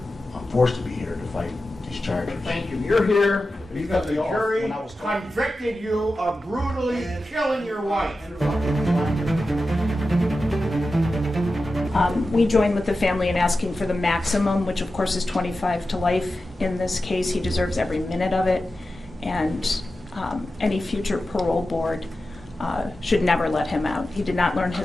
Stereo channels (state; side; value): normal; both; correlation 0.92